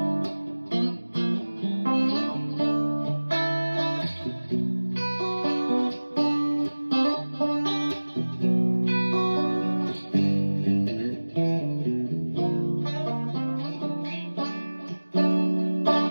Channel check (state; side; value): inverted; both; correlation -1.00